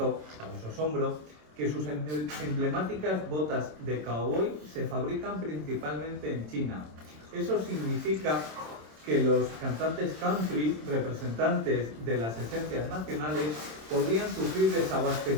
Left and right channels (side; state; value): left; late; 27 ms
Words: para su asombro, que sus emblemáticas botas de cowboy se fabrican principalmente en China. Eso significa que los cantantes country, representantes de las esencias nacionales, podrían sufrir